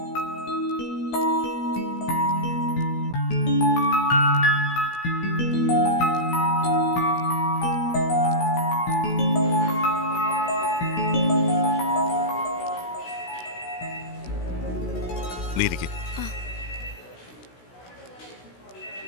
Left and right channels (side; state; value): right; late; 16 ms